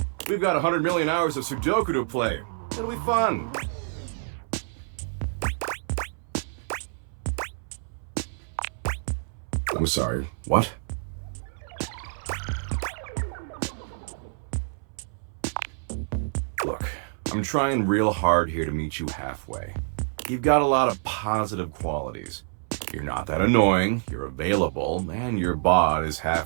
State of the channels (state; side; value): silent; left; 60 dB below the other